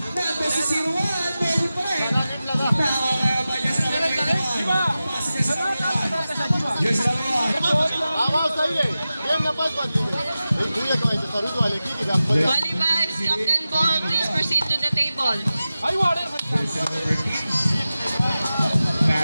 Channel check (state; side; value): inverted; both; correlation -0.94